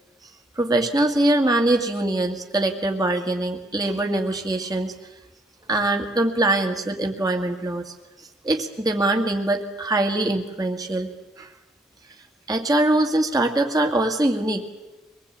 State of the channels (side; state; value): both; normal; correlation 0.68